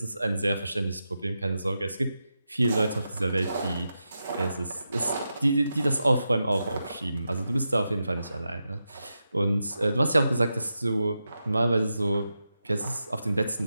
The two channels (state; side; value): inverted; both; correlation -0.89